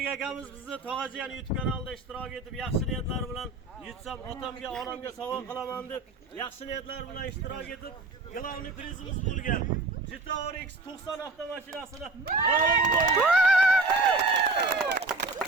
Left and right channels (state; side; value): quieter; left; 3.4 dB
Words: akamiz bizni Tog'ajiyan YouTube kanalida ishtirok etib, yaxshi niyatlar bilan yutsam otamga, onamga sovg'a qilaman deb yaxshi niyatlar bilan ishtirok etib, glavniy prizimiz bo'lgan Jitour X90 avtomashinasini g'olib bo'ldi.